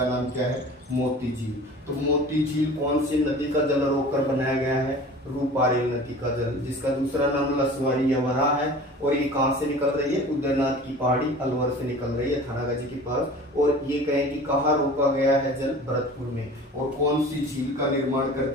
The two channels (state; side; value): normal; both; correlation 0.41